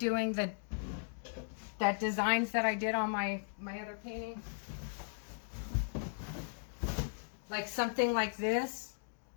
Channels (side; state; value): right; silent; digital silence